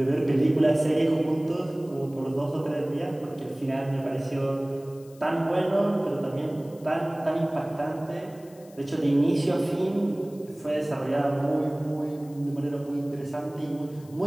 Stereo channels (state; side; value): noise; left; hiss, 26 dB below the sound